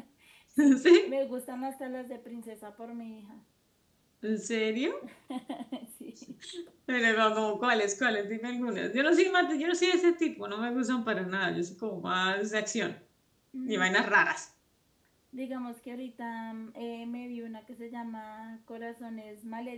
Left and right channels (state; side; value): identical; both; correlation 1.00